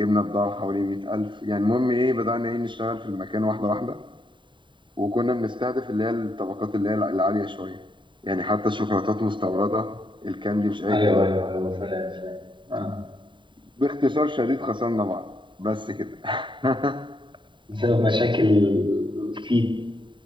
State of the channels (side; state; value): left; late; 0.23 ms